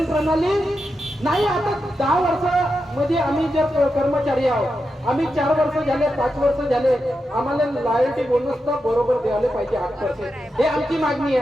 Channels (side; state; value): both; normal; correlation 0.88